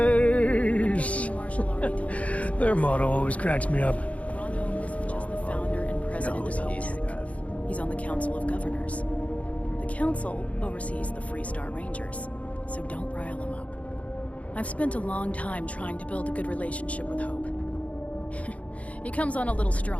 Their motto always cracks me up. Ron Hope isn't just the founder and president of Hope. He's on the Council of Governors. The Council oversees the Freestar Rangers, so don't rile him up. I've spent a long time trying to build a good relationship with Hope. He comes on a little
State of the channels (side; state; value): right; late; 0.066 ms